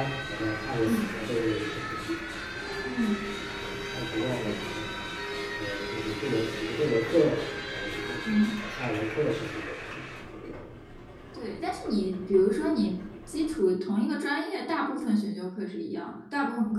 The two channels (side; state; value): both; identical; correlation 1.00